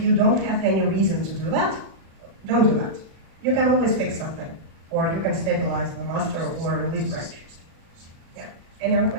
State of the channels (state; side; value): late; left; 36 ms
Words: you don't have any reason to do that, don't do that. You can always fix something, or you can stabilize the master or release branch. Yeah. Any other